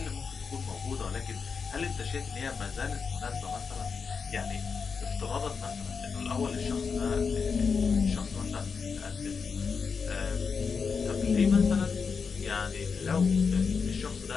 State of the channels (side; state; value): right; quieter; 5.5 dB